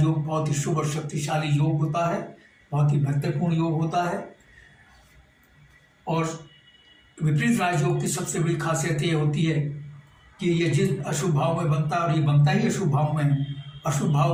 बहुत ही शुभ और शक्तिशाली योग होता है, बहुत ही महत्वपूर्ण योग होता है। और विपरीत राजयोग की सबसे बड़ी खासियत ये होती है कि ये जिस अशुभ भाव में बनता है, और ये बनता ही अशुभ भाव में, अशुभ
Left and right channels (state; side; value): identical; both; correlation 1.00